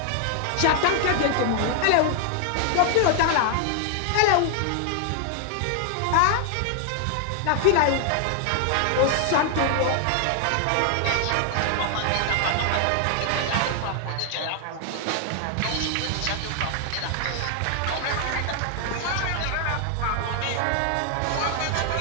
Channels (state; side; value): different; both; correlation 0.00